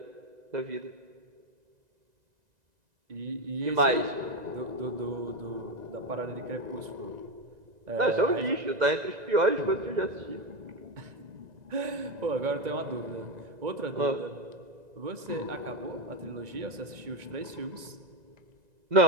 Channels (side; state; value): left; late; 2.0 ms